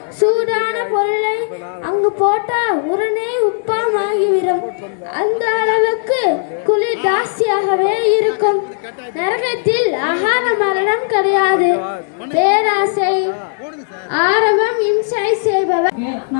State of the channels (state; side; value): silent; right; digital silence